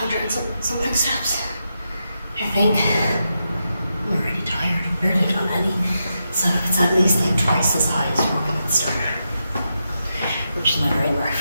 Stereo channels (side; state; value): both; inverted; correlation -0.85